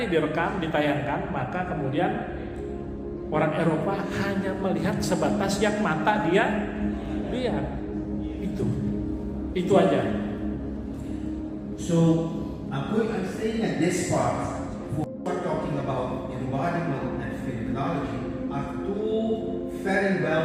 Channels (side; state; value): both; identical; correlation 1.00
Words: direkam, ditayangkan, maka kemudian orang Eropa hanya melihat sebatas yang mata dia lihat. Itu aja. So I'm saying at this part, we're talking about embodiment and phenomenology are two very